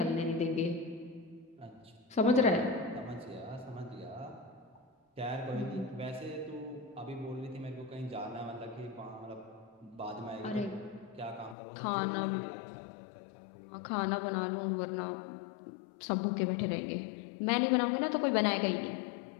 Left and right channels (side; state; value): right; drops out; at 11.6 s